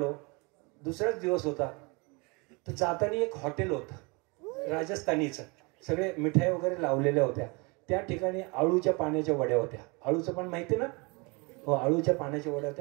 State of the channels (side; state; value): left; quieter; 28.9 dB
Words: दुसराच दिवस होता. तर जाताना एक हॉटेल होतं राजस्थानीचं, सगळे मिठाई वगैरे लावलेल्या होत्या. त्या ठिकाणी आळूच्या पाण्याच्या वड्या होत्या. आळूचं पण माहिती ना? हो, आळूच्या पाण्याच्या वड्या